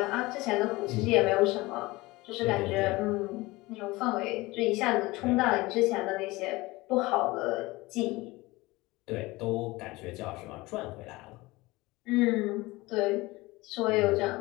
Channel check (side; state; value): right; quieter; 21.1 dB